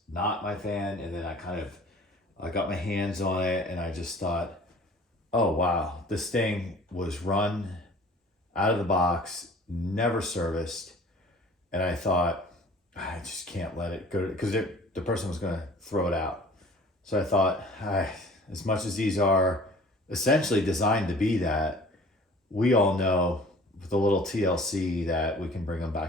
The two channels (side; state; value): both; normal; correlation 0.48